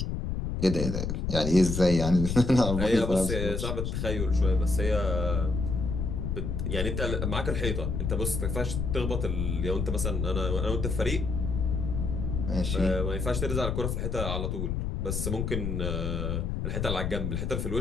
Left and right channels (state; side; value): noise; left; rumble, 1 dB below the sound